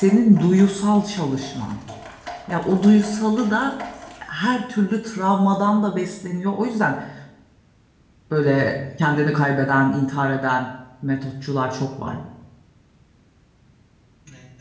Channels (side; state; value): both; identical; correlation 1.00